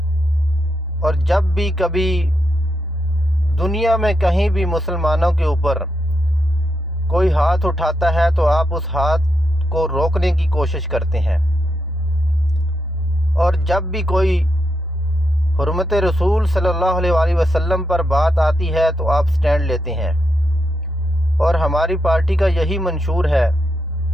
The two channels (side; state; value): both; normal; correlation 0.83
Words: اور جب بھی کبھی دنیا میں کہیں بھی مسلمانوں کے اوپر کوئی ہاتھ اٹھاتا ہے تو آپ اس ہاتھ کو روکنے کی کوشش کرتے ہیں، اور جب بھی کوئی حرمت رسول صلی اللہ علیہ وآلہ وسلم پر بات آتی ہے تو آپ سٹینڈ لیتے ہیں، اور ہماری پارٹی کا یہی منشور ہے۔